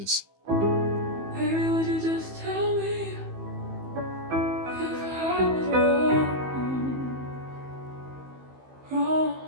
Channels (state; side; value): late; left; 15 ms